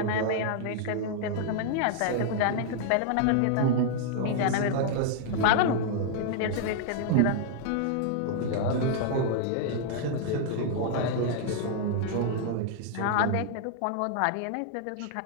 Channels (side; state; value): both; different; correlation -0.01